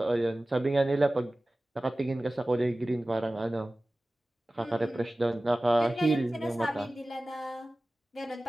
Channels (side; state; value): both; normal; correlation 0.97